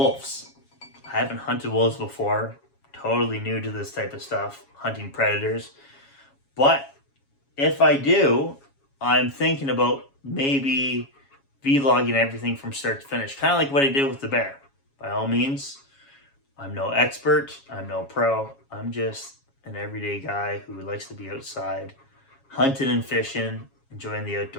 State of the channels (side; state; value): right; late; 7.3 ms